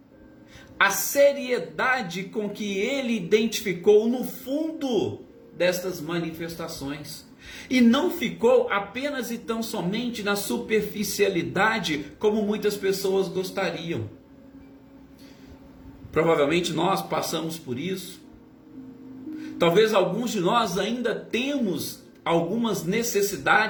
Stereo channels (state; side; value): identical; both; correlation 1.00